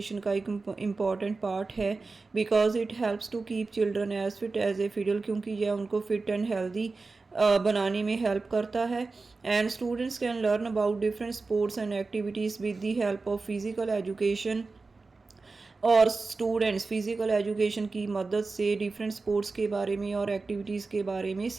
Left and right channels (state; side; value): quieter; left; 3.9 dB